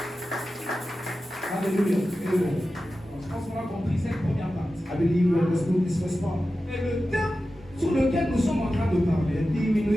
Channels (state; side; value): normal; both; correlation 0.93